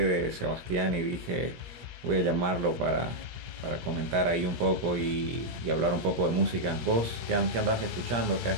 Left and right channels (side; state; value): left; late; 17 ms